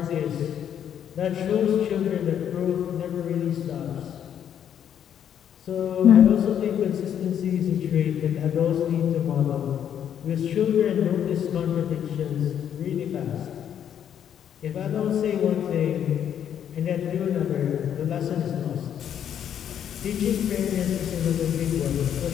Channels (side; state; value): right; quieter; 9.3 dB